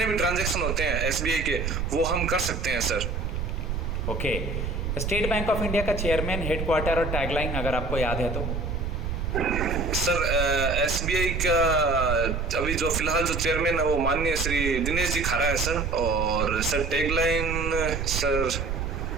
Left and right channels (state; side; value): noise; right; rumble, 2 dB below the sound